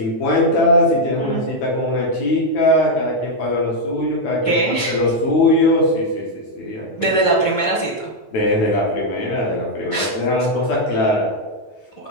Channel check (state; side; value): late; right; 9.1 ms